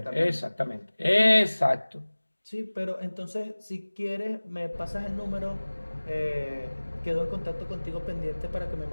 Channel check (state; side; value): inverted; both; correlation -1.00